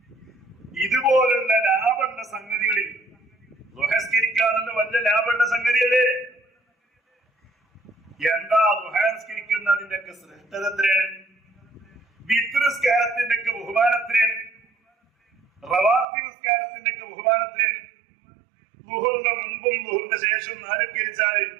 ഇതുപോലുള്ള ലാഭമുള്ള സംഗതികളിൽ ദുഹസ്കരിക്കാനുള്ള വലിയ ലാഭമുള്ള സംഗതിയല്ലേ? എന്താ ദുഹസ്കരിക്കുന്നതിന്റെ ഒക്കെ ശ്രേഷ്ഠത എത്രയാണ്? വിത്രിസ്കാരത്തിന്റെ ഒക്കെ ബഹുമാനം എത്രയാണ്? റവാത്തിബ് നിസ്കാരത്തിന്റെ ഒക്കെ ബഹുമാനം എത്രയാണ്? ളുഹറിന്റെ മുമ്പും ളുഹറിന്റെ ശേഷവും 4 കരിച്ചാൽ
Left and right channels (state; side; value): drops out; left; at 16.1 s